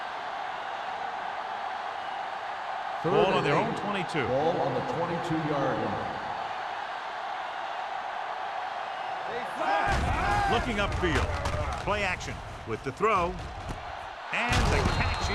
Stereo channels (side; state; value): both; identical; correlation 1.00